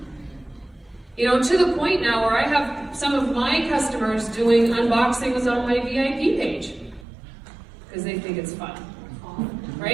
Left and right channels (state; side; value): drops out; left; at 7.1 s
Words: You know, to the point now where I have some of my customers doing unboxings on my VIP page, because they think it's fun,